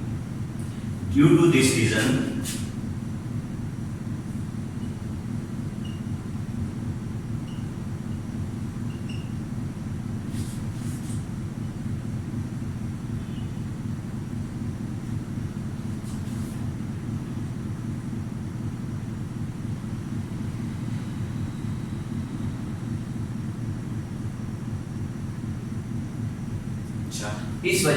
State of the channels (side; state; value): both; identical; correlation 1.00